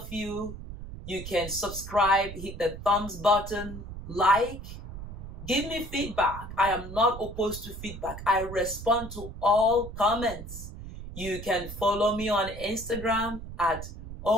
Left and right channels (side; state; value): right; noise; rumble, 11 dB below the sound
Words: you. You can subscribe, hit the thumbs button, like, give me feedback. I am not opposed to feedback. I respond to all comments. You can follow me on Instagram at